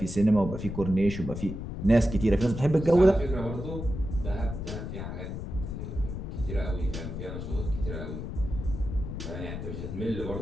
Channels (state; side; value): noise; left; rumble, 6 dB below the sound